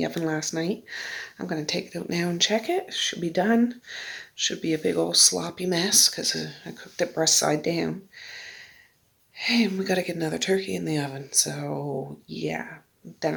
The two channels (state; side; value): identical; both; correlation 1.00